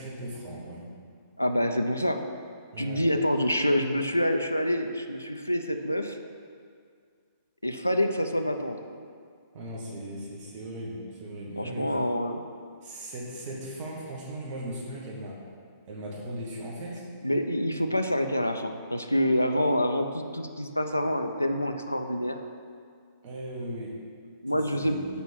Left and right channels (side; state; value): both; inverted; correlation -0.85